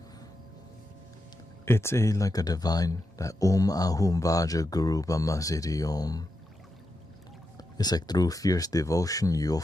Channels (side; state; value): both; normal; correlation 0.87